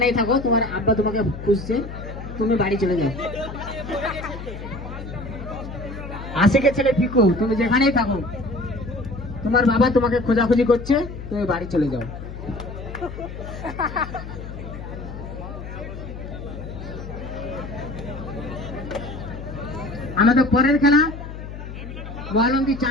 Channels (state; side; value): noise; left; hum, 10 dB below the sound